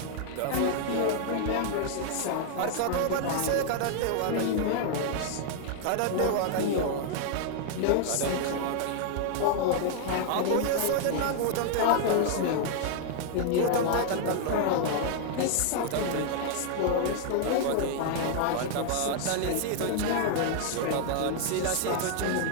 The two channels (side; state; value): both; different; correlation 0.00